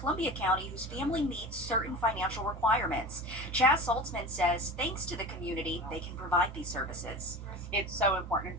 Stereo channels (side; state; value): both; normal; correlation 0.33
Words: County whose family meets certain financial requirements. Chaz Saltzman says, thanks to the community, they can provide these services. It's so important